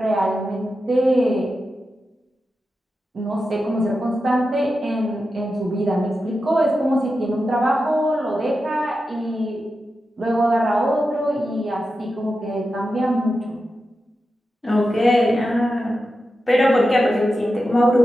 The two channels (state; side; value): normal; both; correlation 0.90